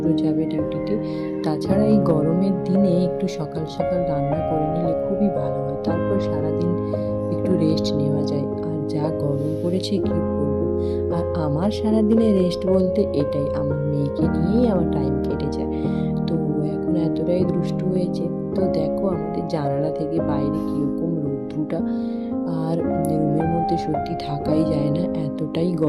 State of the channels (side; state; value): both; identical; correlation 1.00